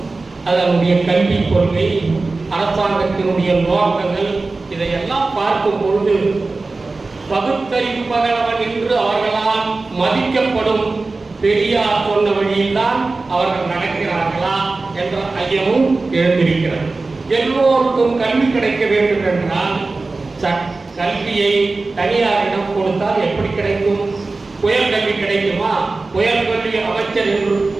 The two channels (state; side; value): quieter; left; 3.6 dB